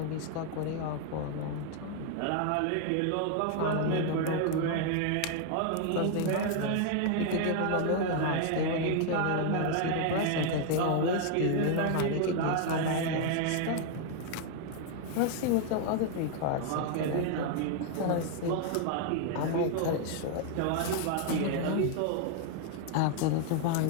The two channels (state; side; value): different; both; correlation 0.00